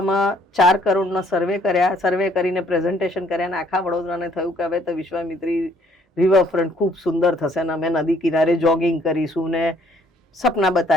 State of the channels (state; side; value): normal; both; correlation 0.63